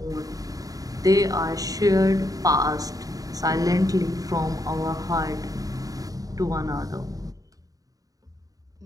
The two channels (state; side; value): late; left; 0.17 ms